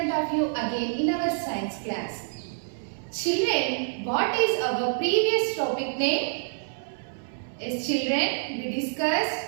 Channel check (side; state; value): left; silent; 60 dB below the other